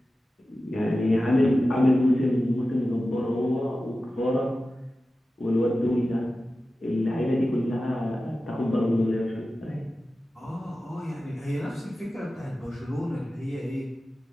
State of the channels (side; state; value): both; normal; correlation 0.94